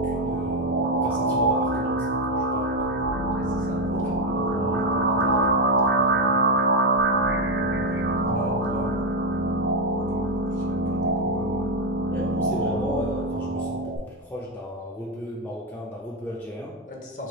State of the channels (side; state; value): both; normal; correlation 0.07